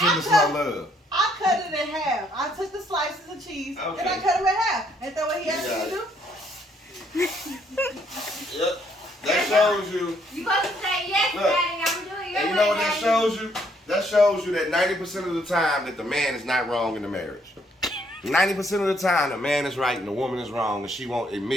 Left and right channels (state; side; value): normal; both; correlation 0.69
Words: slow love. I cut it in half. I took the slices of cheese Okay. and I cut them in half. Ain't that what he asked got me to do? Yep. That shows you. You supposed to say yes, Look, daddy. I'm doing your And you way, know what that daddy. shows you? That shows you that 90% of the time that the man is not wrong in the marriage. 90% of the time the man is right and the woman is wrong and she won't